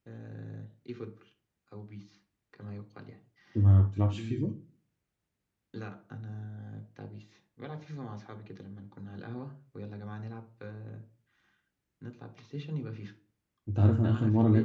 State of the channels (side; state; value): both; identical; correlation 1.00